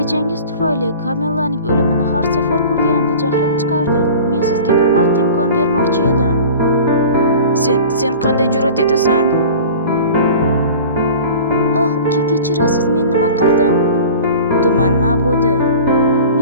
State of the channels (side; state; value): both; inverted; correlation -0.40